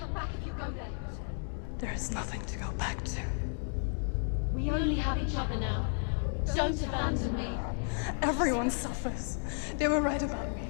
back if you go there. There is nothing to go back to. We only have each other now. Don't abandon me. Everyone suffers. They were right about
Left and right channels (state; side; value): silent; right; 56 dB below the other